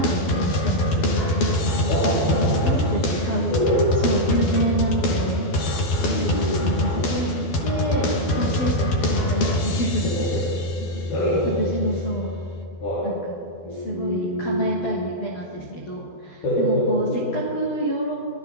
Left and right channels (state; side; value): late; right; 12 ms